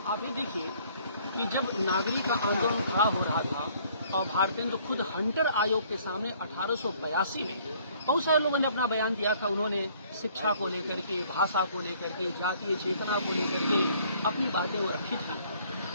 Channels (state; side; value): inverted; both; correlation -0.60